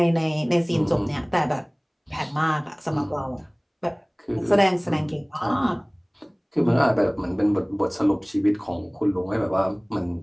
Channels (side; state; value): both; identical; correlation 1.00